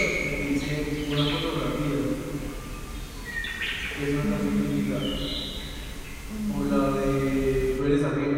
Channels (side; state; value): both; identical; correlation 1.00